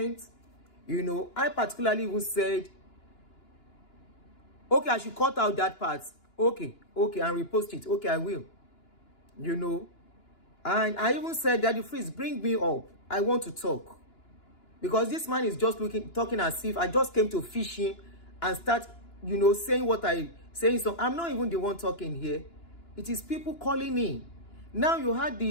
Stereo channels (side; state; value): right; late; 2.9 ms